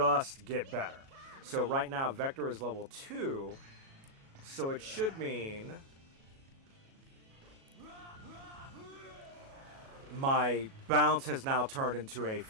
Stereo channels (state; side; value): late; left; 37 ms